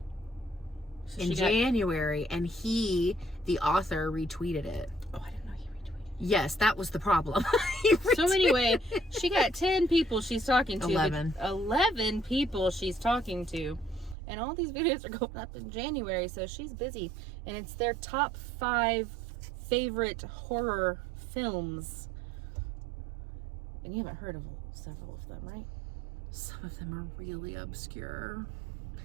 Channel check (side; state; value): left; drops out; at 14.2 s